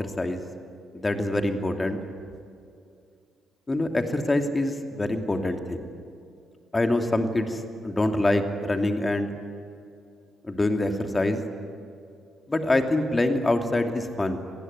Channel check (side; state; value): both; normal; correlation 0.91